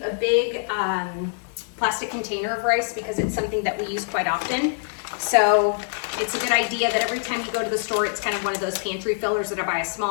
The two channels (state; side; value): silent; right; digital silence